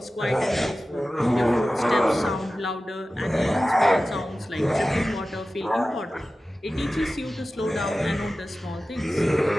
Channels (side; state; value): both; normal; correlation 0.95